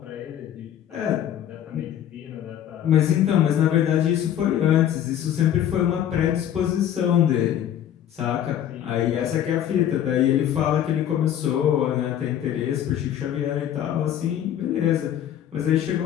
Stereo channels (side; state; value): right; quieter; 10.6 dB